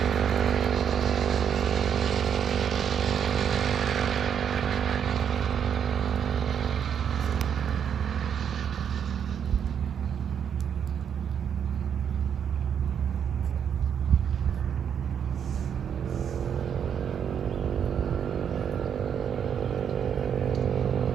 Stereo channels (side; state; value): left; quieter; 8.2 dB